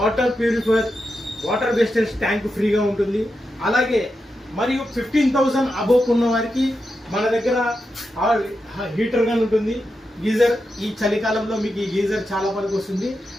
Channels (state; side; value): normal; both; correlation 0.88